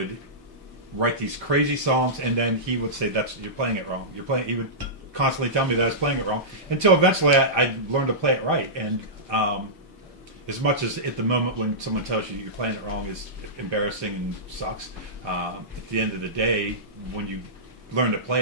write these crazy songs, and then he would say, "You're playing it wrong. He would constantly tell me that I was playing it wrong, until eventually I learned to play it right. And as much as at the moment when someone tells you you're playing it wrong is embarrassing and sucks, at the end of the day, when you learn to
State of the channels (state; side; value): normal; both; correlation -0.16